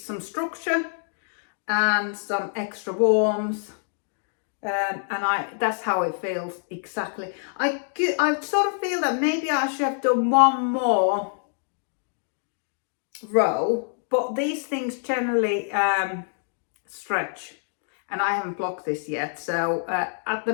structure and some extra warmth, and that's how it feels exactly. I sort of feel that maybe I should have done one more row, but these things generally stretch, and I haven't blocked this yet, so at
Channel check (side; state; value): right; silent; digital silence